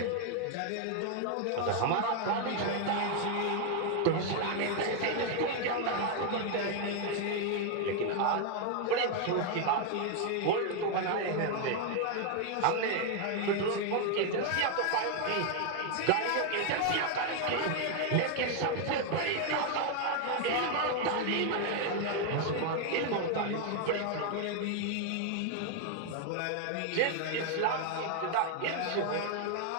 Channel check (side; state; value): both; different; correlation 0.00